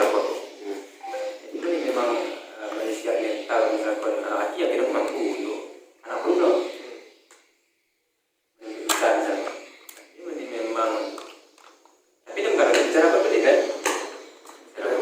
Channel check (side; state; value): both; identical; correlation 1.00